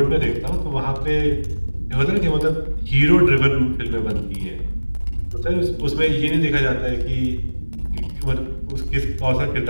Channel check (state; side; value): inverted; both; correlation -1.00